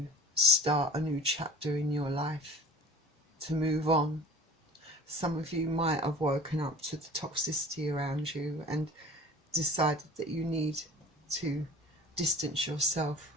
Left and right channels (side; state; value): both; normal; correlation 0.43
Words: start a new chapter in your life, to move on. Some of you might have woken up to the toxicity around you and decided that you need to distance yourself